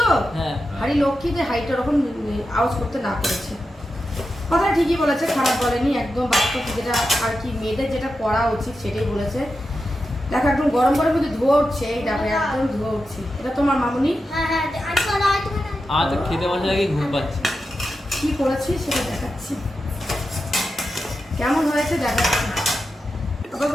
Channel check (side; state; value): both; normal; correlation 0.90